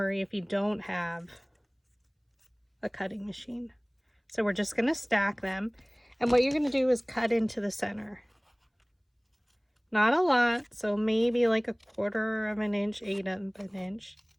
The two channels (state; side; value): identical; both; correlation 1.00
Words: if you don't have a cutting machine. So we're just going to stack them. And what you're going to do is cut into the center. Not a lot, so maybe like 1/4 of an inch, 1/8 of an inch.